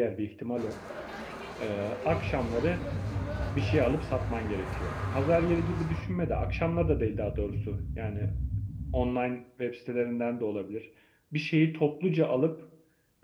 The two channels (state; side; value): identical; both; correlation 1.00